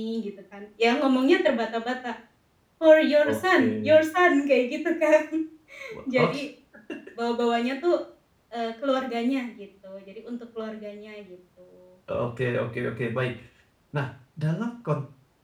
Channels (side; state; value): both; identical; correlation 1.00